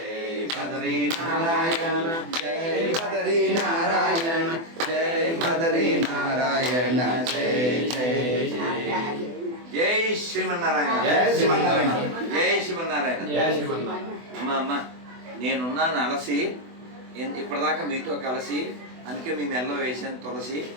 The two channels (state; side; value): late; left; 24 ms